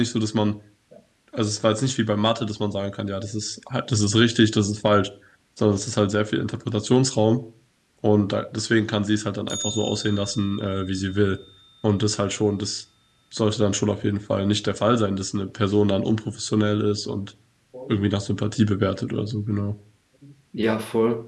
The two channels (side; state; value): both; identical; correlation 1.00